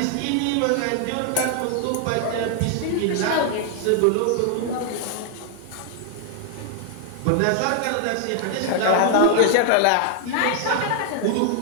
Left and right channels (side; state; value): both; different; correlation 0.00